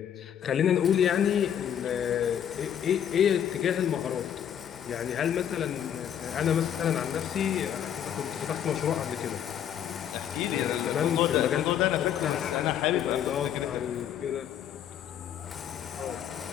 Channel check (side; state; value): right; quieter; 9.5 dB